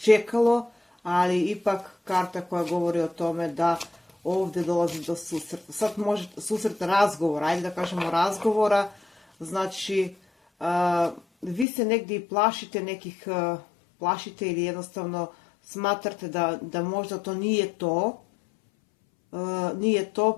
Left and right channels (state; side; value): drops out; right; at 11.7 s